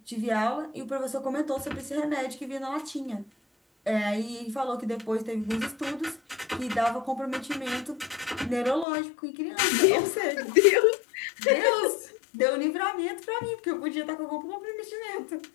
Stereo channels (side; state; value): right; drops out; at 8.8 s